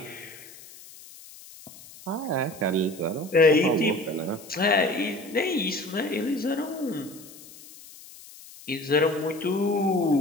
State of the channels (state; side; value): noise; left; hiss, 19 dB below the sound